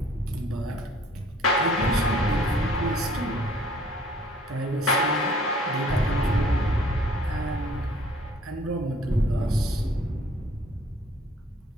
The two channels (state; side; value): normal; both; correlation 0.56